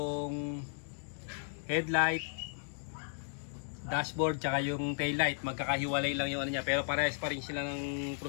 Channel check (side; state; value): right; silent; digital silence